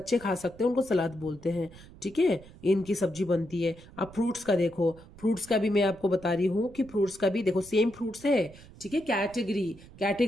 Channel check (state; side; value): noise; right; rumble, 20 dB below the sound